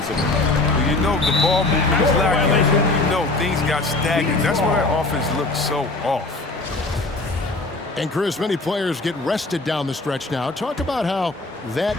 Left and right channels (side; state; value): right; quieter; 3.1 dB